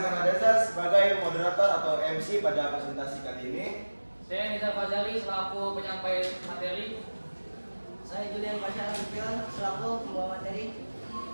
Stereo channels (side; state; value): both; inverted; correlation -1.00